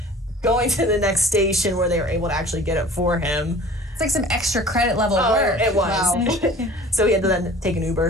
going to the next station where they were able to actually get it for him. It's like some extra credit level work. It was. Wow. So he had to then take an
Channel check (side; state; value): both; normal; correlation 0.45